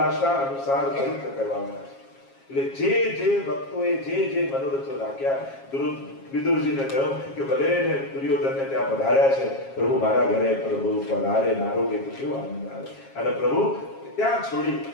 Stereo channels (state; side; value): late; right; 7.4 ms